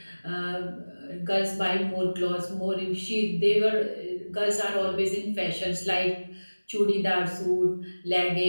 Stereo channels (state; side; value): inverted; both; correlation -1.00